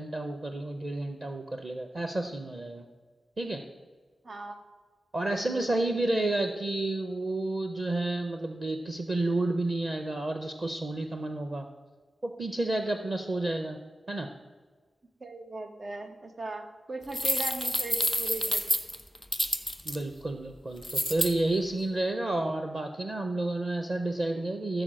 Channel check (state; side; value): normal; both; correlation 0.92